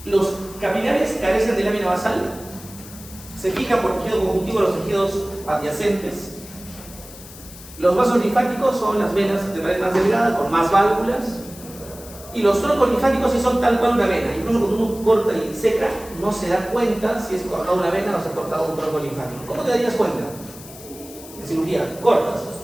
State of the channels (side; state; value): left; noise; hiss, 17 dB below the sound